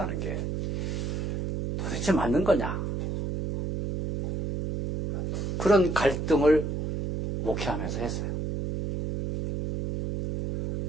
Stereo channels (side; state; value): right; noise; hum, 3 dB below the sound